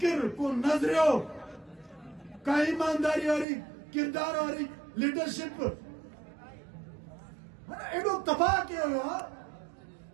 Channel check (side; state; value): left; drops out; at 3.5 s